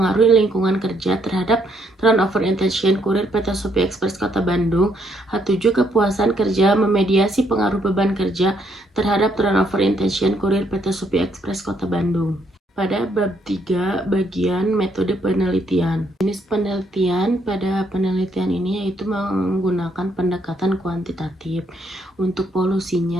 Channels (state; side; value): normal; both; correlation 0.72